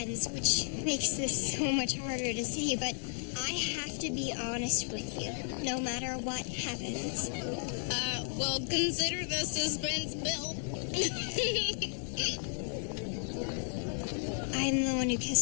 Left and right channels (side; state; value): right; silent; 55 dB below the other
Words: which makes this so much harder to say, but I have to be honest with you, no matter what happens. Well, consider the suspense built. I'm the one who